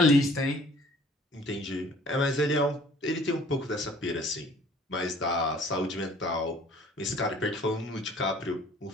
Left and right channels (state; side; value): normal; both; correlation 0.54